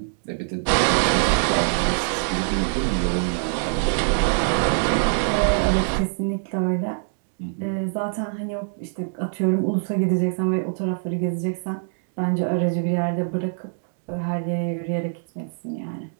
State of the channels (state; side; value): silent; left; digital silence